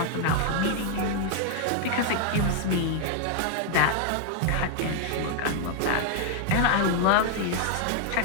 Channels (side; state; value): both; different; correlation 0.00